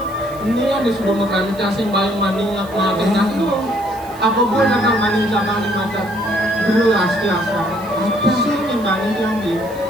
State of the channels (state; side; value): noise; right; hiss, 22 dB below the sound